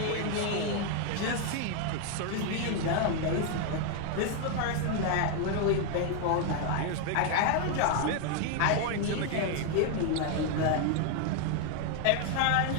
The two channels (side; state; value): both; different; correlation 0.00